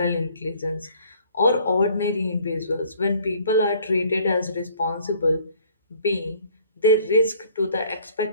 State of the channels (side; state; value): both; inverted; correlation -0.56